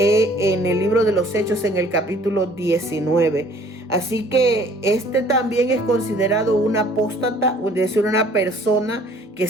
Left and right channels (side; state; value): both; normal; correlation 0.55